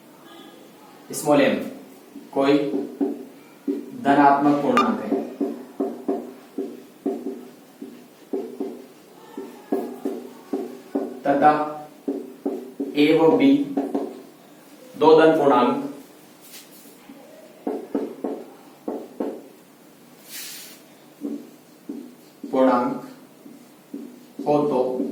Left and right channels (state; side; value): identical; both; correlation 1.00